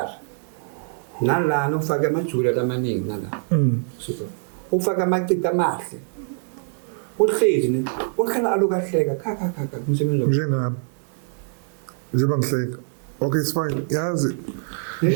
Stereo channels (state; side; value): silent; left; digital silence